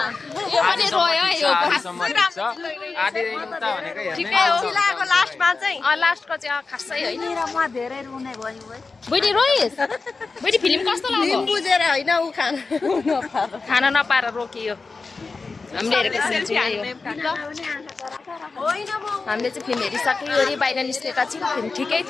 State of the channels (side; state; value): right; quieter; 4.2 dB